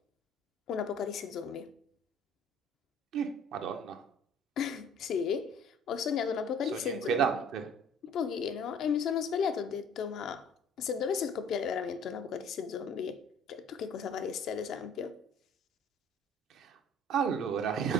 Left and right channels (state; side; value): normal; both; correlation 0.52